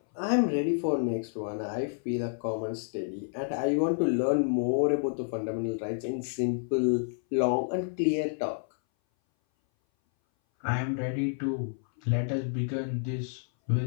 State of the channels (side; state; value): right; silent; 58 dB below the other